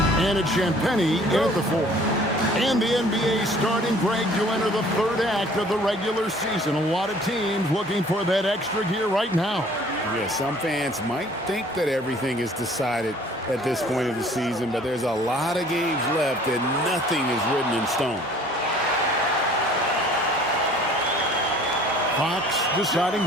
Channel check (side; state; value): both; normal; correlation 0.53